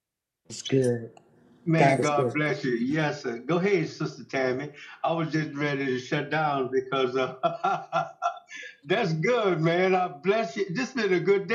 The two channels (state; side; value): identical; both; correlation 1.00